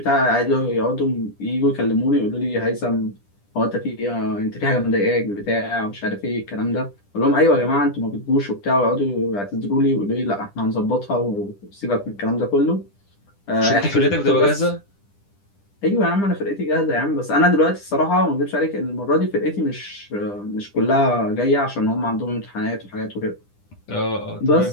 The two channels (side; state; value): right; late; 10 ms